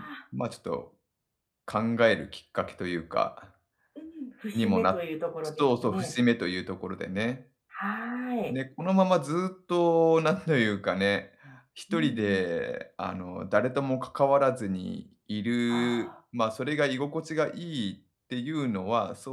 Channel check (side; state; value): both; identical; correlation 1.00